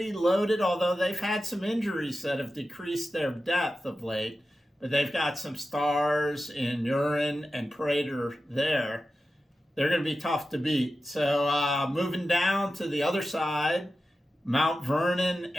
loaded, although they've had some injuries that have decreased their depth of late. But they've got some stars in Urin and Prater there. They're going to be tough to beat. So moving down to the other side, Mount Vernon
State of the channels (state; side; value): normal; both; correlation 0.93